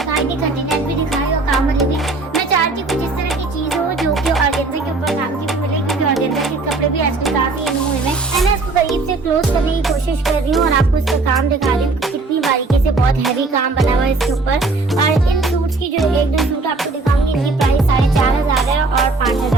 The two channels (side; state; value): left; quieter; 3.5 dB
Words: थी, कंटेनर भी दिखाई और काम वाली भी। मैं चाहती हूँ कुछ इस तरह की चीज हो जो कि ऑर्गेन्जा के ऊपर काम की भी मिले, क्योंकि ऑर्गेन्जा के कपड़े भी आजकल काफी इन हुए हैं। मैं इसको करीब से क्लोज करने की कोशिश कर रही हूँ, और आपको इसका काम दिखा रही हूँ कितनी बारीकी से बहुत हैवी काम बना हुआ है इसके ऊपर। और इन सूट्स की जो एक दो सूट आपको दिखाऊंगी, इनकी प्राइस 4500 है और